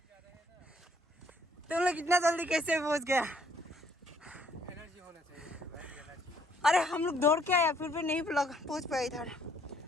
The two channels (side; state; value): both; normal; correlation 0.65